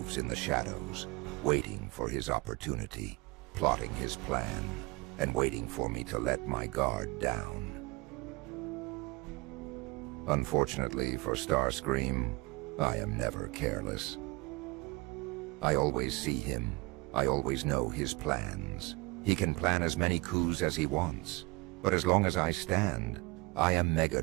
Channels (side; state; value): left; quieter; 24.3 dB